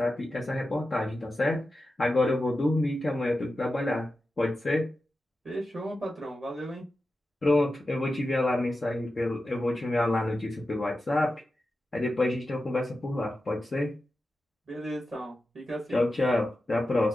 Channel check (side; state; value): both; normal; correlation 0.92